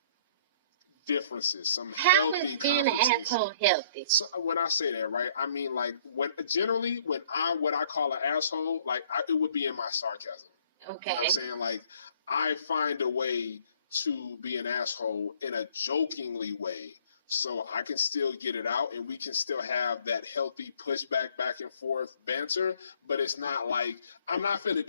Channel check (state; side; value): inverted; both; correlation -0.60